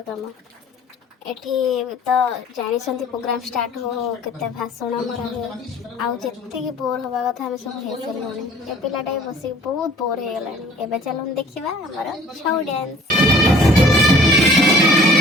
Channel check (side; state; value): both; normal; correlation 0.52